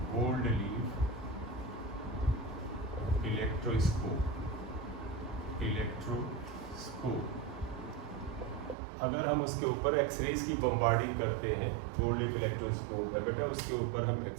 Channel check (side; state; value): left; drops out; at 8.8 s